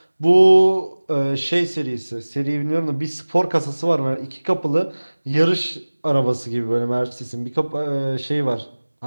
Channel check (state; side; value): inverted; both; correlation -1.00